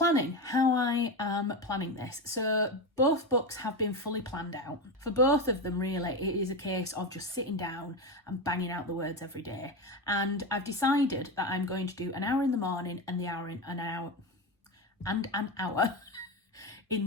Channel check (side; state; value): both; normal; correlation 0.17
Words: how I am planning this. So both books have been fully planned out. For both of them, really, it is a case of just sitting down and banging out the words every day. And I've decided that I'm going to do an hour in the morning and an hour